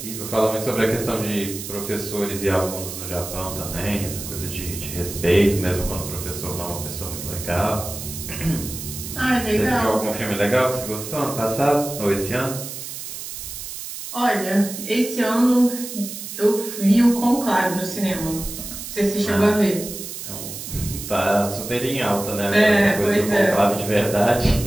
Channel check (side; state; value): right; noise; hiss, 9 dB below the sound